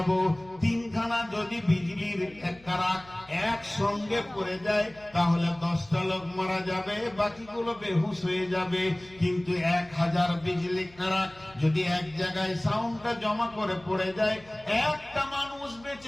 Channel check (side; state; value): left; noise; hum, 25 dB below the sound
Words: 3খানা যদি বিজলির কারাক একসঙ্গে পড়ে যায়, তাহলে 10টা লোক মারা যাবে, বাকিগুলো বেহুশ হয়ে যাবে। কিন্তু 1000 বিজলি কারাক যদি এক জায়গায় সাউন্ডটা জমা করে পড়ে যায়, একটা মানুষ